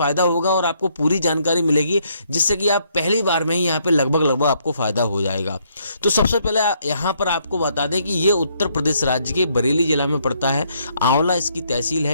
होगा और आपको पूरी जानकारी मिलेगी, जिससे कि आप पहली बार में ही यहाँ पे लगभग आपको फायदा हो जाएगा। तो सबसे पहले यहाँ पर आपको बता दें कि ये उत्तर प्रदेश राज्य के बरेली जिला में पड़ता है। आंवला इसकी तहसील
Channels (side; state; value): both; inverted; correlation -0.71